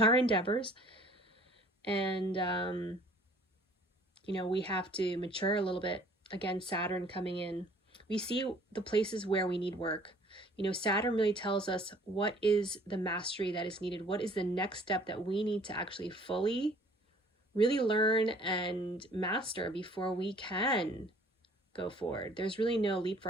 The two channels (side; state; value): both; normal; correlation 0.54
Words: our endeavors. And, we have to mature a little bit. Again, Saturn coming in. We see the places where we need work. Saturn really tells us what is the mastery that is needed. What is the next step that we need to actually fully really learn and master before we can go forward. There's really no